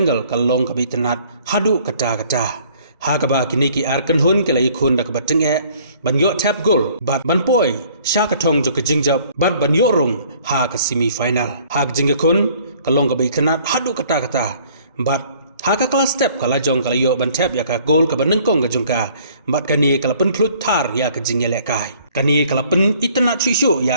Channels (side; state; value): both; inverted; correlation -0.58